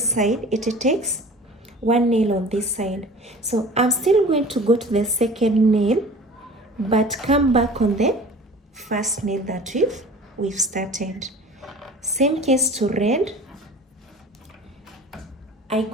side, it takes one nail on this side. So I'm still going to go to the second nail but come back on the first nail that we've started. Same case to red. I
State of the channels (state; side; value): normal; both; correlation 0.42